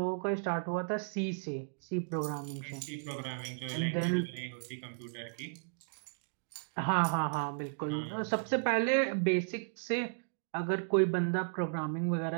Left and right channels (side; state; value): left; silent; digital silence